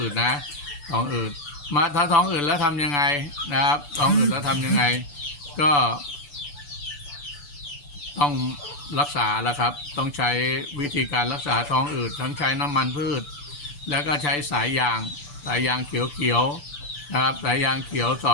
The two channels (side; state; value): right; late; 6.9 ms